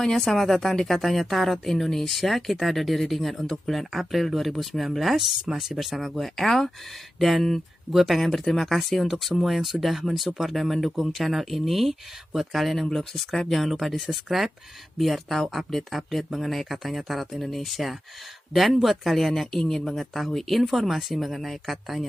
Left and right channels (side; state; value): both; normal; correlation 0.92